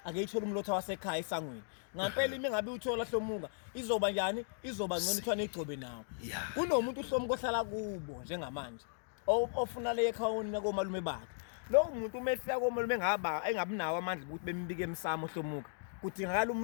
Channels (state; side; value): silent; right; digital silence